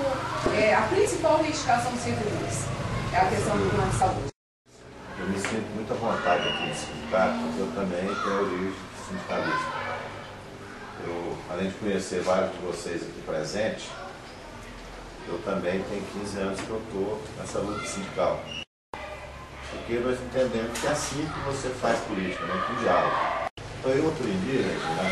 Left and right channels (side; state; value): both; identical; correlation 1.00